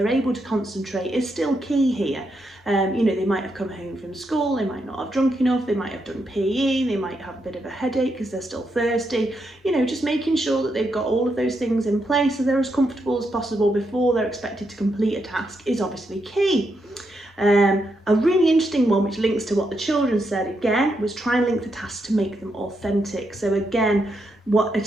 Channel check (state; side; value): normal; both; correlation 0.81